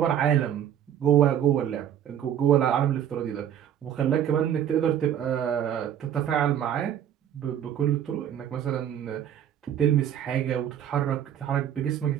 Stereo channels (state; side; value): quieter; left; 10.0 dB